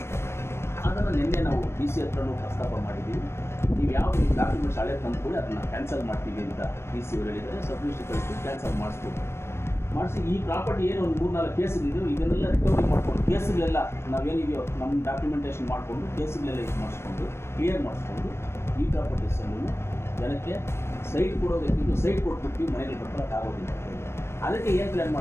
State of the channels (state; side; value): late; right; 0.12 ms